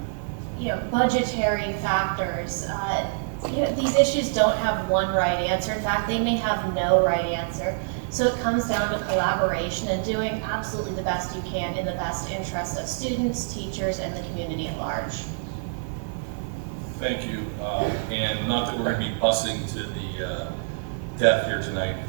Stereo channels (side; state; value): left; silent; 58 dB below the other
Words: budgetary factors, you know, these issues don't have one right answer. In fact, they may have no right answer. So it comes down to collaboration and doing absolutely the best you can in the best interest of students, teachers, and the community at large. Thank you. And not that we're going to be busing to the death here tonight.